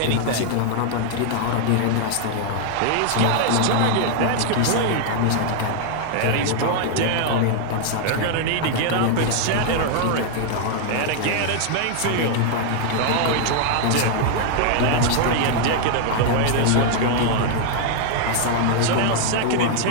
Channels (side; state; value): both; different; correlation 0.00